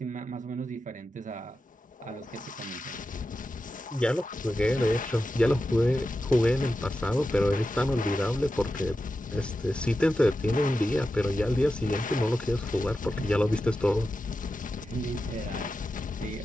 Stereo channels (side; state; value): both; normal; correlation 0.91